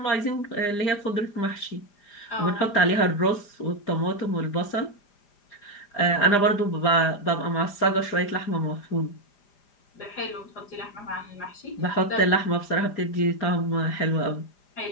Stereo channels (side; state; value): right; late; 4.9 ms